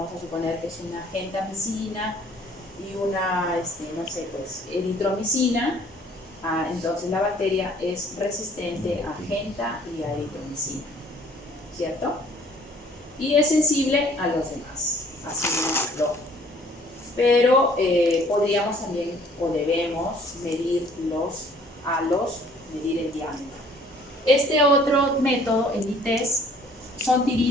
a suponer que es una gentamicina y una, eritromicina. Entonces la bacteria es resistente a genta y a eritromicina, ¿cierto? Y es sensible a los demás, así no. Pero podríamos también, o debemos, medir los halos, medir el diámetro. Este otro método, el ITES, son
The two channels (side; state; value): both; normal; correlation 0.57